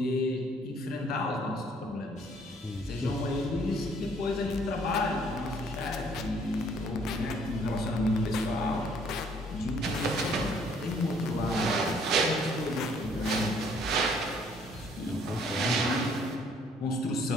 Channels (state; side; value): normal; both; correlation 0.62